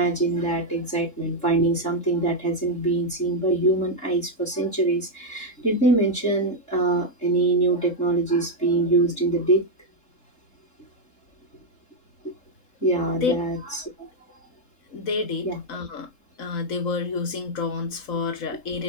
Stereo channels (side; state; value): right; late; 3.7 ms